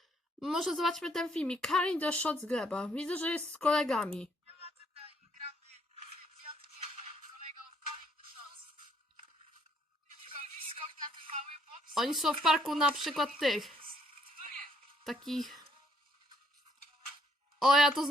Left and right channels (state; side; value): normal; both; correlation 0.68